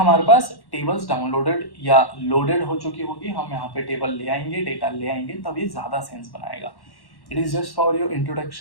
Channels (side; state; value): right; late; 1.1 ms